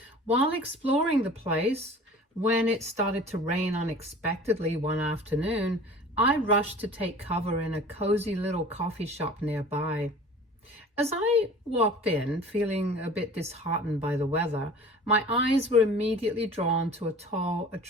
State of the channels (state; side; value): normal; both; correlation 0.43